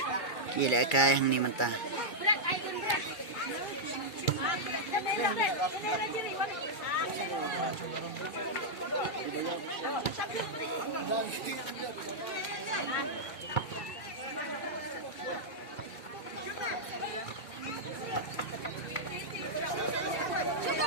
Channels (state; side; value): late; right; 2.3 ms